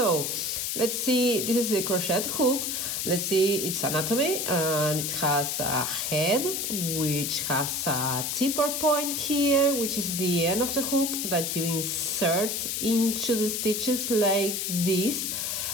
let's see, this is the crochet hook. Let's see its anatomy, and it has a head which has a tipper point here, which is the end of the hook that you insert into the stitches like this.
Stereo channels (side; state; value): left; noise; hiss, 1 dB below the sound